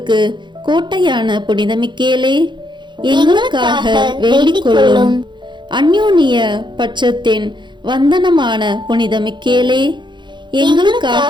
கோட்டையான புனித மிக்கேலே, எங்களுக்காக வேண்டிக் கொள்ளும். அந்யோன்ய பட்சத்தின் வந்தனமான புனித மிக்கேலே,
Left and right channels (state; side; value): late; left; 0.22 ms